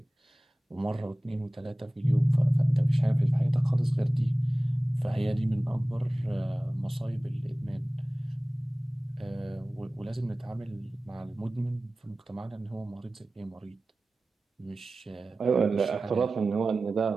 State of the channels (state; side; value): normal; both; correlation 0.97